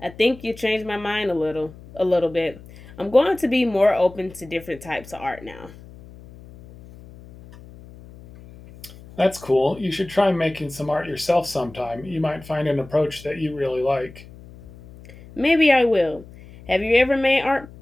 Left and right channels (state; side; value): noise; left; hum, 19 dB below the sound